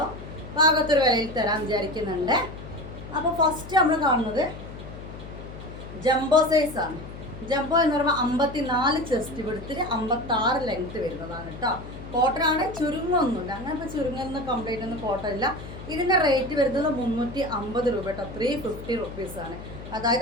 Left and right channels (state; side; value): noise; left; hum, 12 dB below the sound